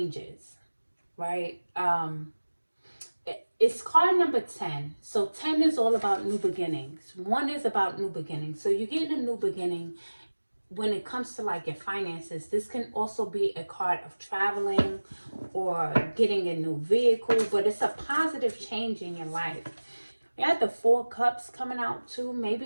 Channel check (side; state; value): both; inverted; correlation -1.00